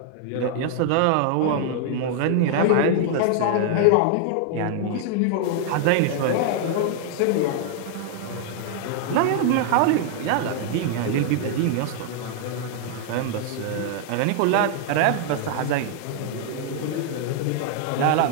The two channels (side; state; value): both; different; correlation 0.00